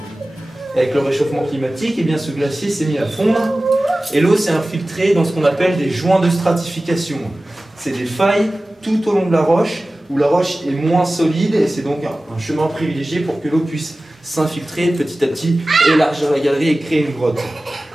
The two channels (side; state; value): both; normal; correlation 0.97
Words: Avec le réchauffement climatique, eh bien, ce glacier s'est mis à fondre et l'eau s'est infiltrée dans ce qu'on appelle des joints de stratification. C'est des failles tout au long de la roche où la roche est moins solide et c'est donc un chemin privilégié pour que l'eau puisse s'infiltrer petit à petit, élargir la galerie et créer une grotte.